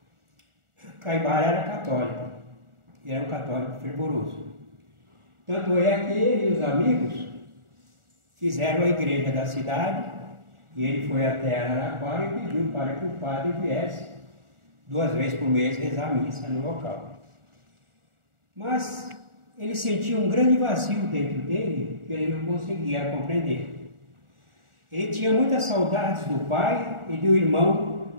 Caibara era católico, e era um católico fervoroso. Tanto é que ele e os amigos fizeram a igreja da cidade, e ele foi até Araraquara e pediu para que o padre viesse 2 vezes por mês rezar a missa no local. Mas ele sentia um grande vazio dentro dele que ele não conseguia compreender. Ele tinha muitas saudades do pai e do irmão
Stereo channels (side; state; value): left; late; 1.4 ms